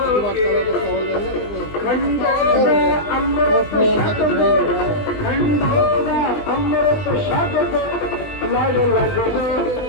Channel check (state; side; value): late; right; 20 ms